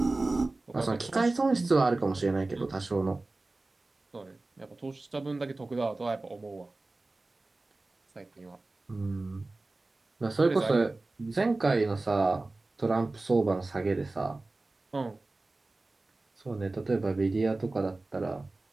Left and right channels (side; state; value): left; quieter; 3.2 dB